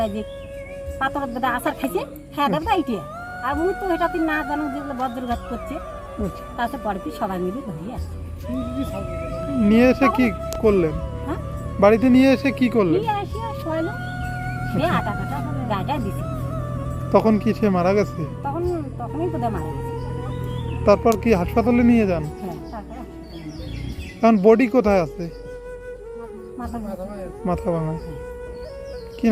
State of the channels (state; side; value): identical; both; correlation 1.00